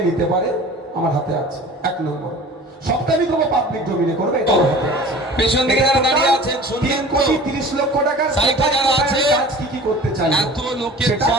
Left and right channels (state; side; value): normal; both; correlation 0.42